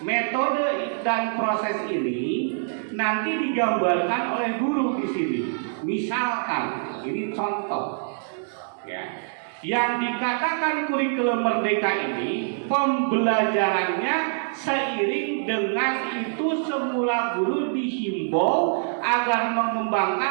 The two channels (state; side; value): silent; left; digital silence